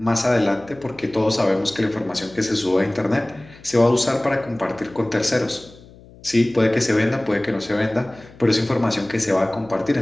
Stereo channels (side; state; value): left; noise; hum, 23 dB below the sound